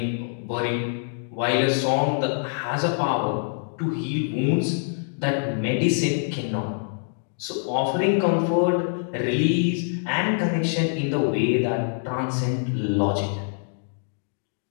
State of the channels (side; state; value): right; silent; digital silence